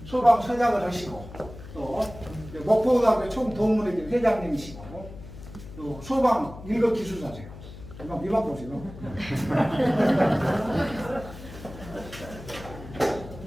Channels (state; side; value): noise; left; hum, 15 dB below the sound